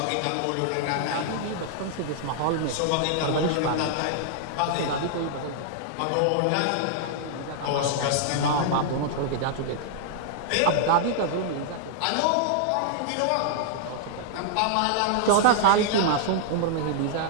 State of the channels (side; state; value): both; different; correlation -0.01